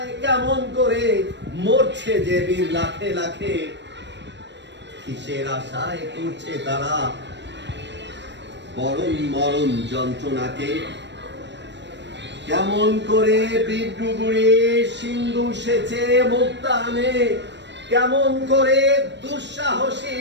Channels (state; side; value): late; left; 0.52 ms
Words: কেমন করে মরছে যে বীর লাখে লাখে। কিসের আশায় করছে তারা বরণ মরণ যন্ত্রণাকে। কেমন করে বিদ্রুগুড়ি সিন্ধু সেচে মুক্তা আনে, কেমন করে দুঃসাহসী